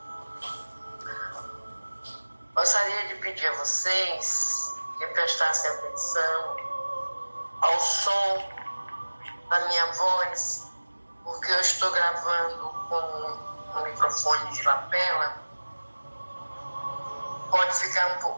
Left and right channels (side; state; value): both; inverted; correlation -1.00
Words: Gostaria de pedir a vocês que prestassem atenção ao som da minha voz, porque eu estou gravando com um microfone de lapela. Pode ficar um